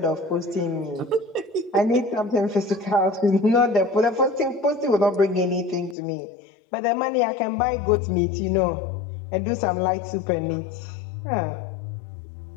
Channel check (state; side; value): drops out; right; at 6.0 s